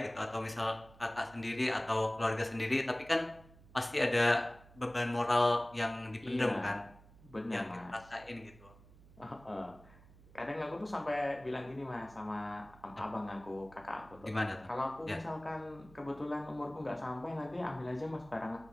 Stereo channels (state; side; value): noise; right; hum, 22 dB below the sound